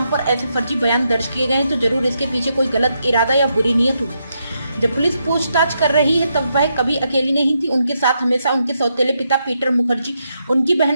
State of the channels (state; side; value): inverted; both; correlation -0.81